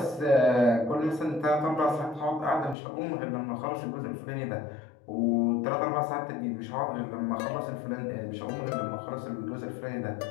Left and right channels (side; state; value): right; drops out; at 2.8 s